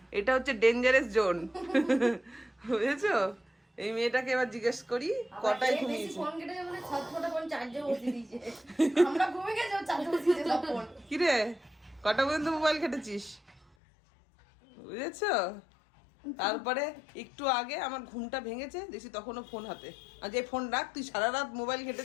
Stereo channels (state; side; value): drops out; right; at 13.7 s